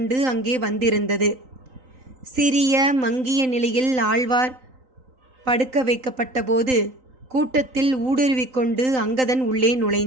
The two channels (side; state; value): left; late; 3.9 ms